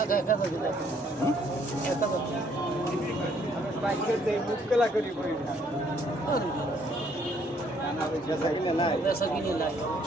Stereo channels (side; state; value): both; normal; correlation 0.66